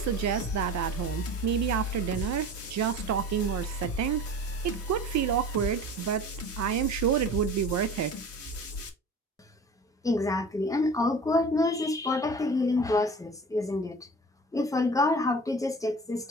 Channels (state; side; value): normal; both; correlation 0.38